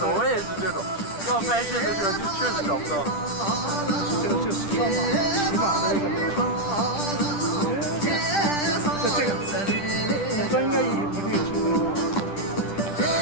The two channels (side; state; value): right; late; 10 ms